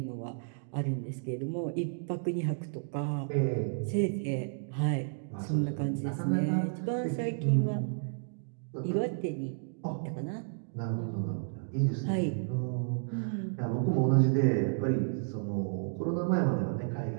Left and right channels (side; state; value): left; silent; digital silence